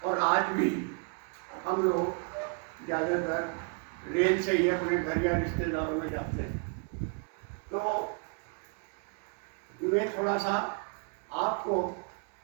और आज भी हम लोग ज़्यादातर रेल से ही अपने घर या रिश्तेदारों में जाते हैं। तो मैं थोड़ा सा आपको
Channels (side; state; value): left; quieter; 36.4 dB